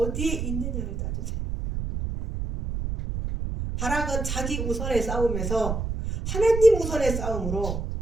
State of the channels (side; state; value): right; noise; rumble, 3 dB below the sound